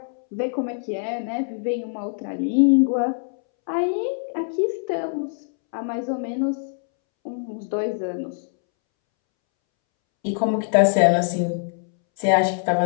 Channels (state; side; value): silent; right; 63 dB below the other